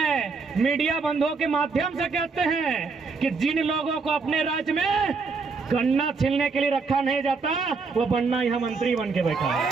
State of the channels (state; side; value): quieter; left; 4.5 dB